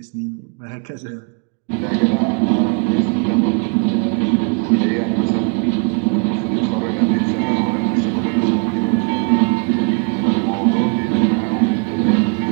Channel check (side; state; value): left; quieter; 35.8 dB